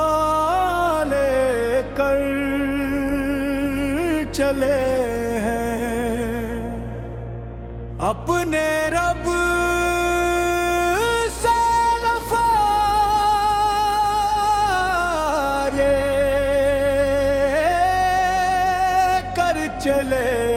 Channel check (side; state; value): both; identical; correlation 1.00